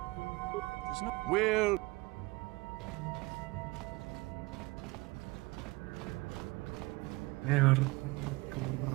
There's no... Well...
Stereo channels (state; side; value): quieter; left; 23.5 dB